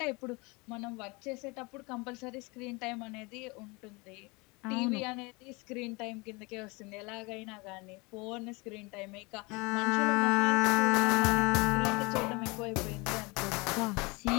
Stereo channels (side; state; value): right; quieter; 26.7 dB